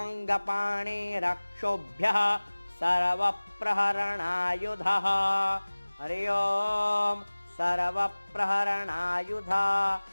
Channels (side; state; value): both; inverted; correlation -1.00